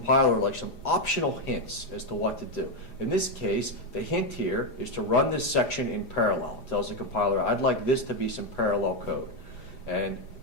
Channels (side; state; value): right; late; 4.9 ms